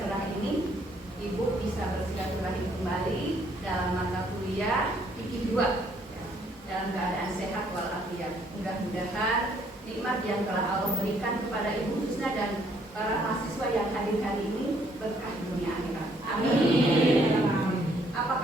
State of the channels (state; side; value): normal; both; correlation 0.67